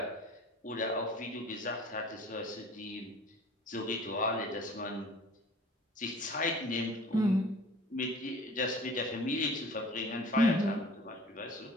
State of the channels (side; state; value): both; normal; correlation 0.45